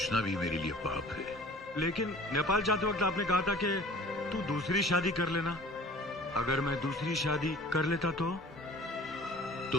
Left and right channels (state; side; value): normal; both; correlation 0.46